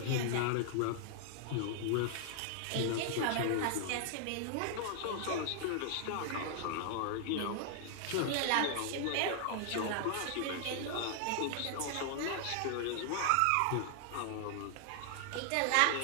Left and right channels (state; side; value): different; both; correlation 0.00